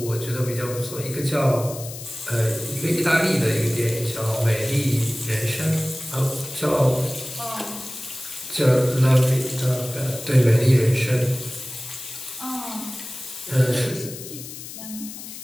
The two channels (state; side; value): noise; left; hiss, 12 dB below the sound